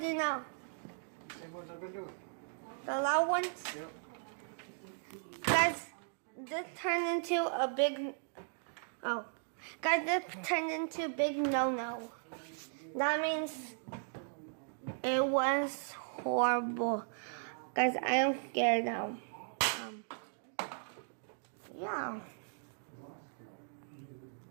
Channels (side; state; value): left; silent; digital silence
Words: now? Same ones I've been doing. The loud ones? Yep. Guys, this turned into a big... Oh. Guys, this turned into a big no-no. That means it was horrible. Guys, I am scared now. Yeah.